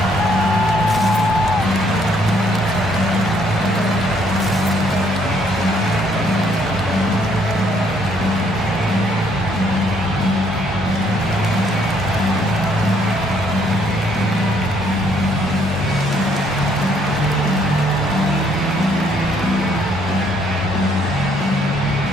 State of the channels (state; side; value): normal; both; correlation 0.67